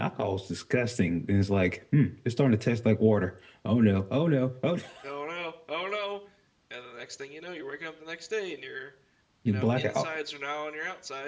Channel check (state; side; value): identical; both; correlation 1.00